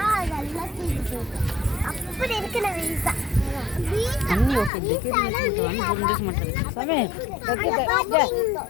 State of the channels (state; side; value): drops out; right; at 4.7 s